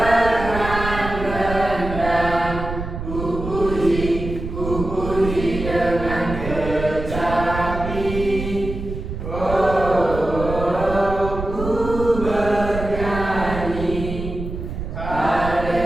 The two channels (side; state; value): right; noise; rumble, 7 dB below the sound